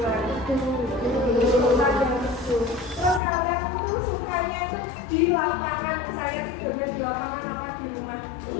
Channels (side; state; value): right; drops out; at 3.2 s